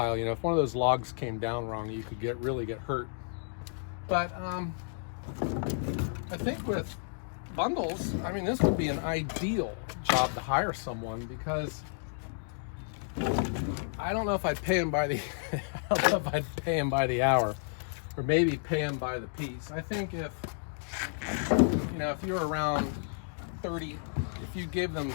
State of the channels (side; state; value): right; silent; digital silence